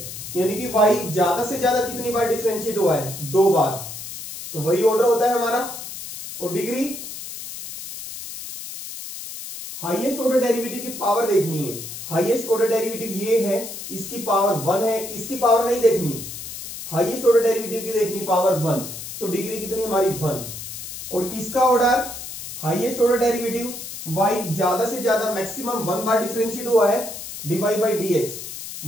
यानी कि वाई ज्यादा से ज्यादा कितनी बार डिफरेंशिएट हुआ है? 2 बार, तो वही ऑर्डर होता है हमारा। और डिग्री, हाईएस्ट ऑर्डर डेरिवेटिव की पावर देखनी है। हाईएस्ट ऑर्डर डेरिवेटिव ये है, इसकी पावर 1 है, इसकी पावर नहीं देखनी, हाईएस्ट ऑर्डर डेरिवेटिव की देखनी पावर 1, तो डिग्री कितनी हमारी 1। और इसका order, highest order derivative y ज्यादा से ज्यादा मैक्सिमम 1 बार डिफरेंशिएट हुआ है dy बाई dx,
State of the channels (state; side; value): noise; left; hiss, 10 dB below the sound